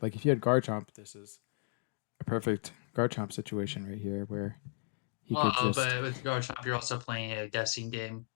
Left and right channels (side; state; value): right; silent; digital silence